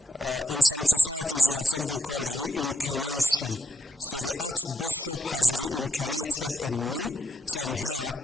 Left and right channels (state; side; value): normal; both; correlation 0.83